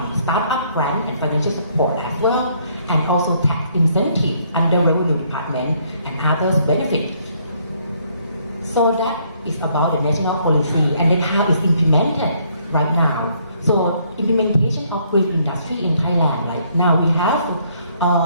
startup grant, and financial support as well, and also tax incentive under revenue department and others benefits. So that is about the national policy and then how it's implemented right now. So implementation of green industry in Thailand, like now we have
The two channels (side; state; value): both; inverted; correlation -0.68